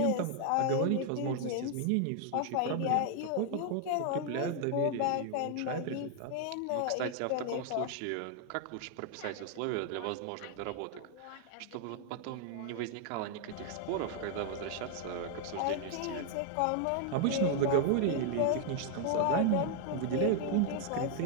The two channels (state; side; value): different; both; correlation 0.00